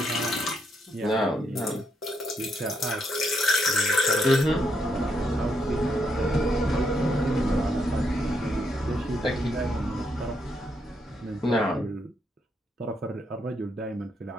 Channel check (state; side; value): normal; both; correlation 0.77